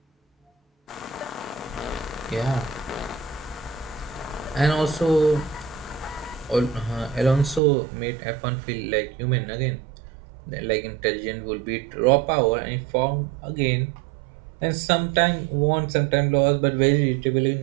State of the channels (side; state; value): left; drops out; at 7.6 s